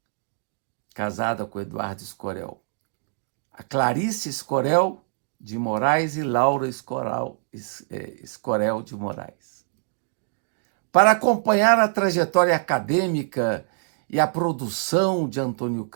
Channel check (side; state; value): left; silent; digital silence